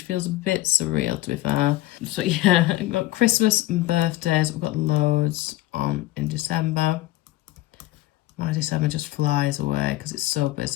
feels a bit surreal, to be fair. So yeah, I've got Christmas and birthdays. We've got loads on in December. My December just flies away because it's so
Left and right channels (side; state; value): right; quieter; 17.2 dB